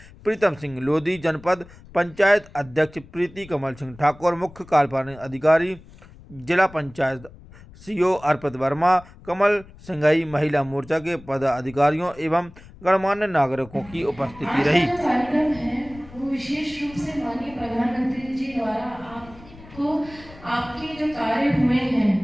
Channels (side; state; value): left; noise; rumble, 21 dB below the sound